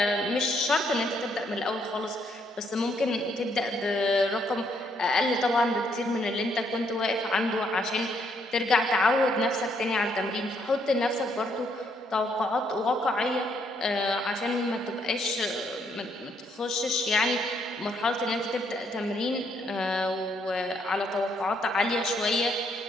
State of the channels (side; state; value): both; normal; correlation 0.72